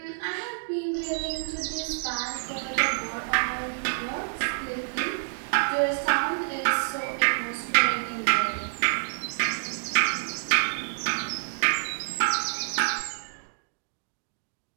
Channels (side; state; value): left; silent; digital silence